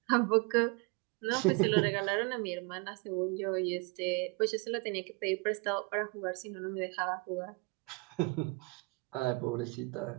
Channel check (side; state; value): left; quieter; 28.2 dB